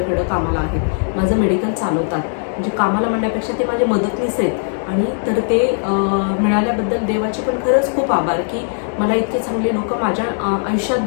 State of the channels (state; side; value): silent; right; 61 dB below the other